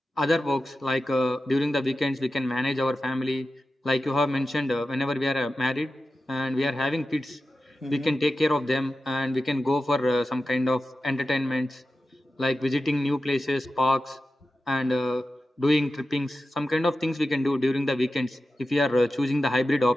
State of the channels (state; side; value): normal; both; correlation 0.92